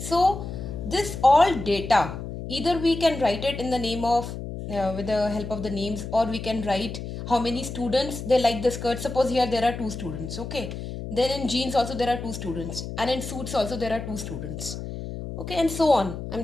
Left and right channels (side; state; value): left; noise; hum, 8 dB below the sound